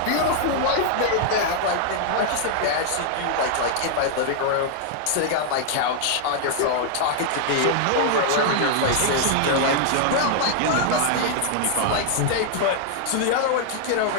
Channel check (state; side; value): different; both; correlation 0.00